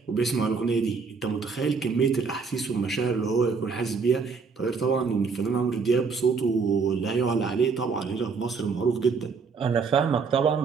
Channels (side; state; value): left; quieter; 5.1 dB